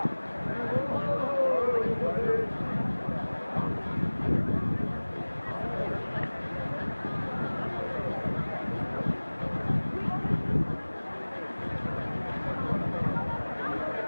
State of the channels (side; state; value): both; inverted; correlation -1.00